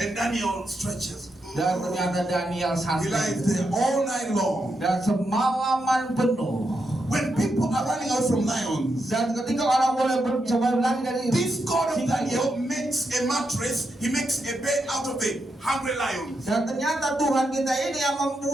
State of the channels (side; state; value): both; normal; correlation 0.84